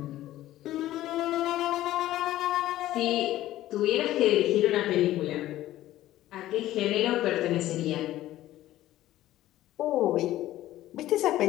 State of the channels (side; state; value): right; quieter; 14.6 dB